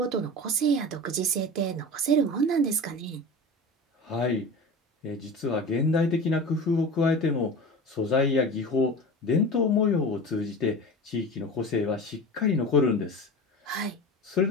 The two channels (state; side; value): normal; both; correlation 0.32